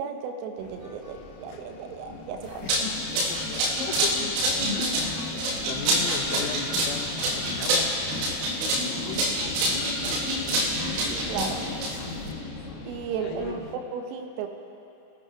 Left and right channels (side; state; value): left; late; 32 ms